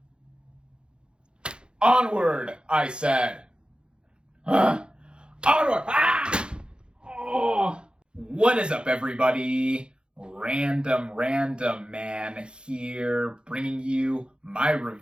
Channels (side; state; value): left; late; 0.052 ms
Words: Onward, I said. Onward! Ah! Oh! What is up, everybody? RandomRandomMan here, bringing you my